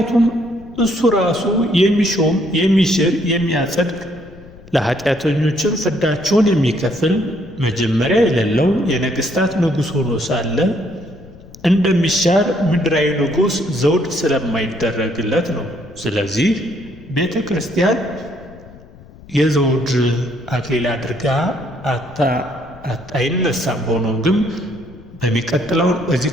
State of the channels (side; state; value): left; noise; rumble, 21 dB below the sound